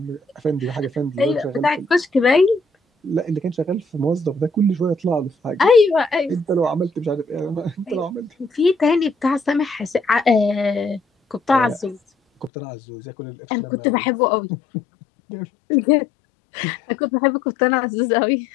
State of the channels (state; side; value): drops out; right; at 12.5 s